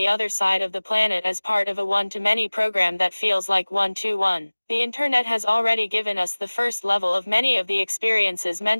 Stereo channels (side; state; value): both; inverted; correlation -1.00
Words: other side of the planet as part of a one-to-many program that feels like one-to-one. The internet has already given us the first level of many of the experiences